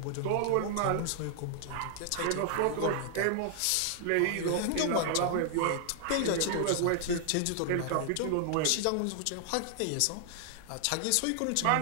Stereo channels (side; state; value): both; different; correlation 0.00